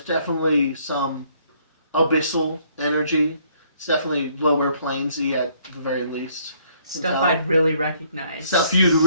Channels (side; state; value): both; inverted; correlation -0.66